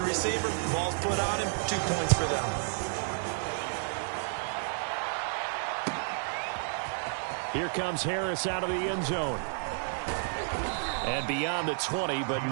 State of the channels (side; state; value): left; silent; 57 dB below the other